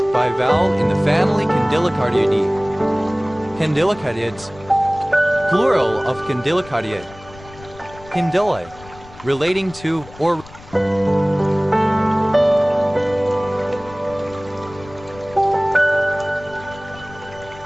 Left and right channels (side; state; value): left; noise; rumble, 20 dB below the sound